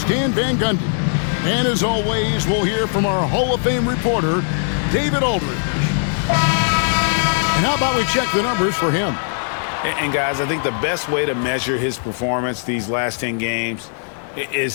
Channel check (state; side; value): silent; right; digital silence